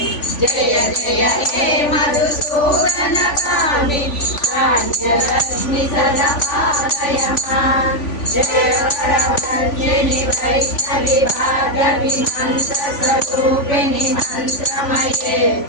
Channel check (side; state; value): right; late; 3.5 ms